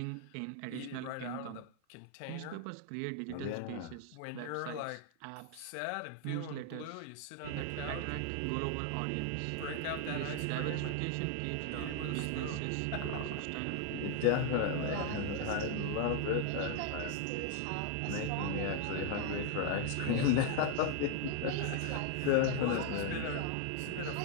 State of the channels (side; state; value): both; different; correlation 0.00